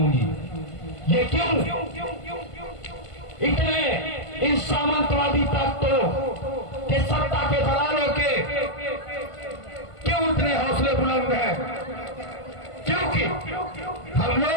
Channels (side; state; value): right; late; 1.5 ms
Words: ये क्यों? इतने इन सामंतवादी तत्वों के, सत्ता के दलालों के क्यों इतने हौसले बुलंद हैं? क्योंकि हम